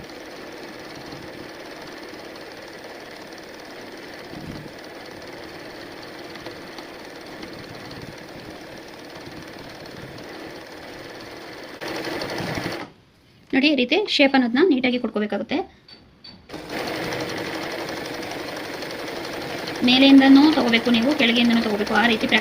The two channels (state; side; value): identical; both; correlation 1.00